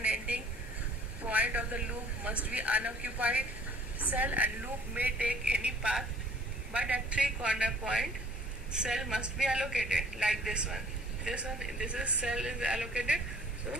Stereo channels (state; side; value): normal; both; correlation 0.54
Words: ending point of the loop must be unoccupied cell, and loop may take any path, but at three corner point cell must be allocated, like this one. This is cell is allocated. So